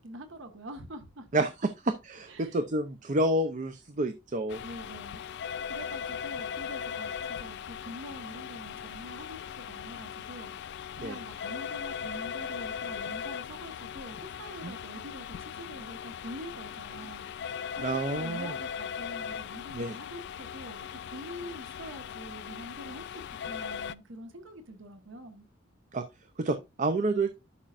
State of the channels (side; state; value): both; normal; correlation 0.13